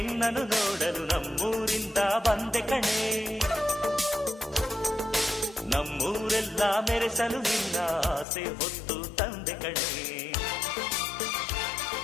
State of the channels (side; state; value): right; drops out; at 8.2 s